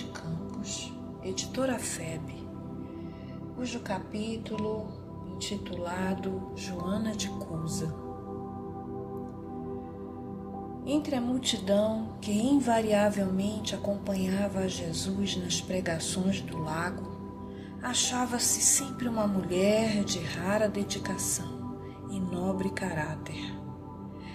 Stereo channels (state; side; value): identical; both; correlation 1.00